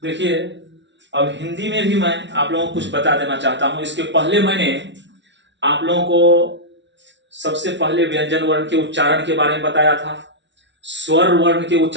देखिए, अब हिंदी में भी मैं आप लोगों को कुछ बता देना चाहता हूं। इसके पहले मैंने आप लोगों को सबसे पहले व्यंजन वर्ण के उच्चारण के बारे में बताया था, स्वर वर्ण के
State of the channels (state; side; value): late; left; 0.52 ms